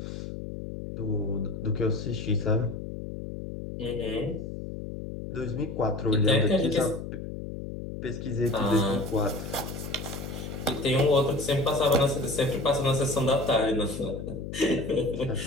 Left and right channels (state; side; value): noise; left; hum, 8 dB below the sound